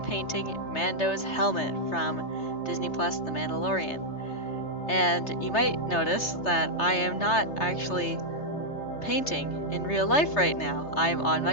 painting Mando's helmet from Disney Plus The Mandalorian. And you might notice that I am not actually painting in real life right now. I'm on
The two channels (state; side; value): late; right; 3.3 ms